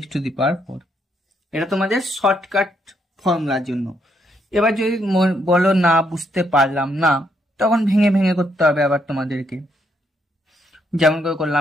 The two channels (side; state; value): both; normal; correlation 0.75